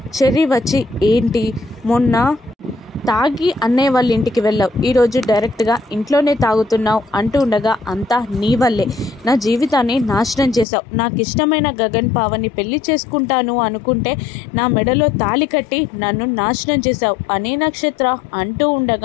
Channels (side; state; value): right; drops out; at 10.7 s